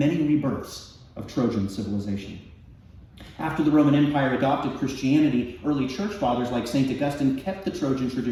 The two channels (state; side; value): identical; both; correlation 1.00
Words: rebirths of Trojan civilization. After the Roman Empire adopted Christianity, early church fathers like St. Augustine kept the Trojan